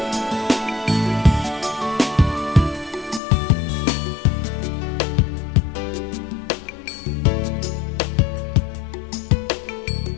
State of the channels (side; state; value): right; drops out; at 3.2 s